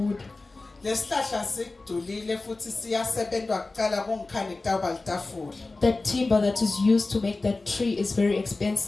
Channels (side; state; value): right; quieter; 3.4 dB